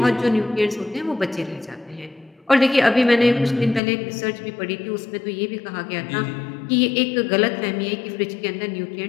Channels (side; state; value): right; drops out; at 3.8 s